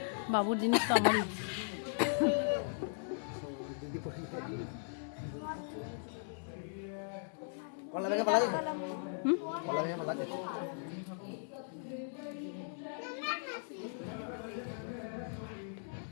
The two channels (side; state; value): right; silent; digital silence